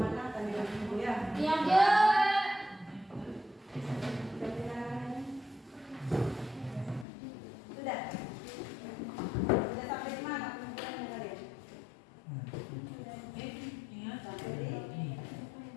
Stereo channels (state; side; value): drops out; right; at 7.1 s